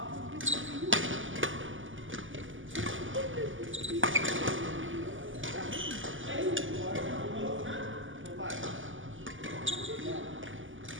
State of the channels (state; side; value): late; left; 0.57 ms